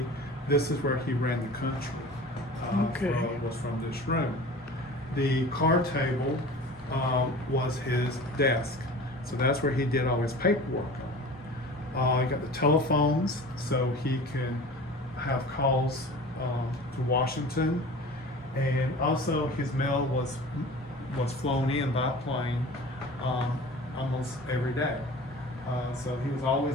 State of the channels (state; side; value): normal; both; correlation 0.39